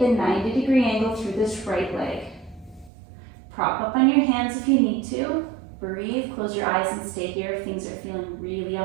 90-degree angle through this right leg. Prop up on your hands if you need to. Breathe, close your eyes and stay here if things are feeling really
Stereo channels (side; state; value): left; drops out; at 2.9 s